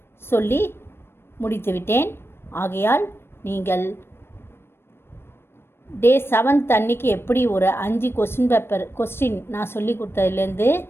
சொல்லி முடித்துவிட்டேன். ஆகையால் நீங்கள் டே 7th அன்றைக்கி எப்படி ஒரு 5 கொஸ்டின் நான் சொல்லி கொடுத்ததுலேருந்து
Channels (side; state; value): right; late; 0.12 ms